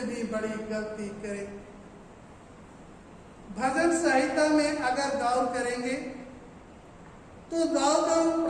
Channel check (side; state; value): both; identical; correlation 1.00